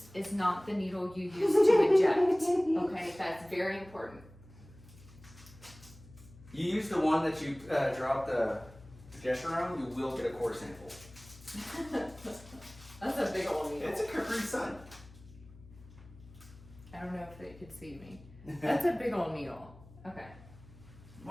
is not the needle you use to inject. Okay, that's very important. You use the one that you drop the progesterone, you will get a core sample. That's a big old needle. It's a Capri Sun. I don't know if they could see me. That's a big old needle. Okay.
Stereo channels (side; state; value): left; noise; hum, 21 dB below the sound